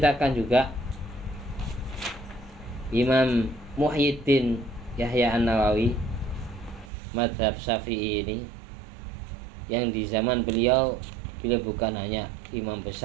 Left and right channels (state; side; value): drops out; left; at 6.9 s